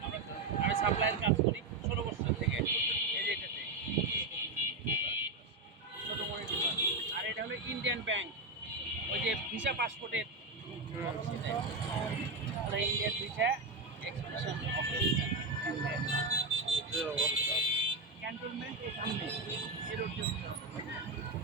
আমি সাপ্লাইয়ের কাজ করি ১৬ বছর থেকে। এই যে এটাতে ছোট মনিটর, আর এটা হলো ইন্ডিয়ান ব্যাংক, ওই যে ভিসা পাসপোর্টের ইন্ডিয়ান ভিসা এক্সপ্রেশন যে অবস্থা ক্যান্টনমেন্ট এই সামনে এর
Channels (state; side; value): quieter; left; 3.3 dB